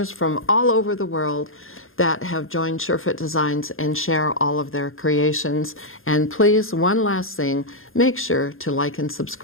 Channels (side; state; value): right; late; 0.60 ms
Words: from all over the world that have joined SureFit Designs and share all of their creations. And please, one last thing, make sure to like and